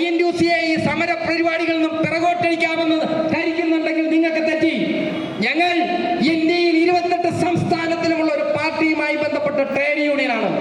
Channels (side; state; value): both; identical; correlation 1.00